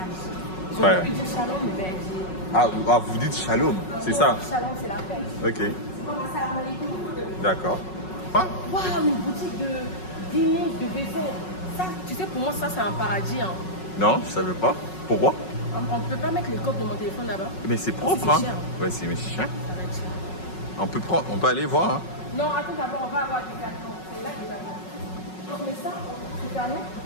Je Ouais. pu dire shalom, mais ben, j'ai. Ah, vous dites shalom, c'est ça? Shalom, c'est la paix. Ok. C'est comme un salam alaikum. D'accord. Ah, Waouh, une boutique de dîner, de vaisselle. Ça, tu sais, pour moi, ça, c'est un paradis. Hein. non, je savais pas. Pourquoi? On ne peut pas mettre les coques de mon téléphone là-bas. Mais c'est propre, C'est hein? cher. Ouais, c'est mais cher. Ça va être cher. On peut aller voir, hein? Non, attends d'abord, on va avoir des cartons. C'est là que des cartons. Mais ça, c'est fermé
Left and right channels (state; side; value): late; right; 5.4 ms